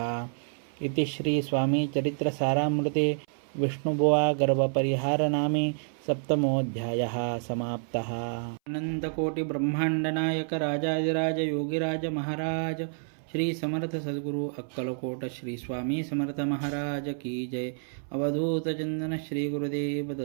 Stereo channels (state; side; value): silent; left; 59 dB below the other